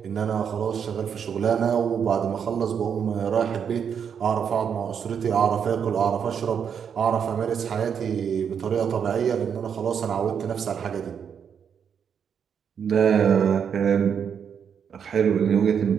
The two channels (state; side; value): quieter; left; 7.5 dB